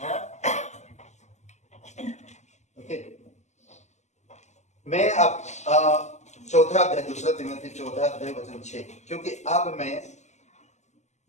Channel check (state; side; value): late; right; 0.33 ms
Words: मैं अब 4 अध्याय 2 तिमोथी 4 अध्याय वचन 6, क्योंकि अब मैं